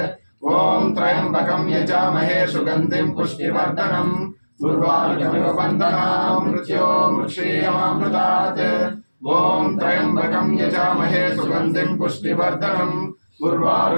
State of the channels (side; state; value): both; inverted; correlation -1.00